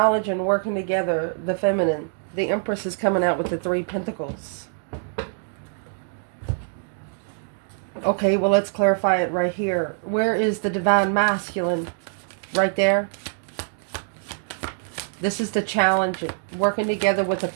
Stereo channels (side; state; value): left; silent; digital silence